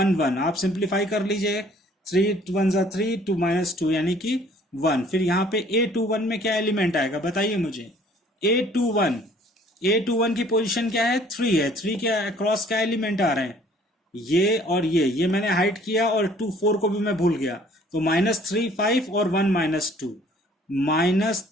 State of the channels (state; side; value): normal; both; correlation 0.56